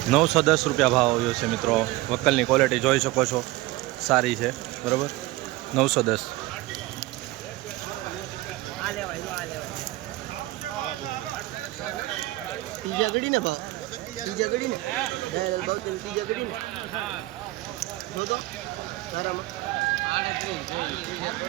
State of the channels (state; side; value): quieter; left; 18.9 dB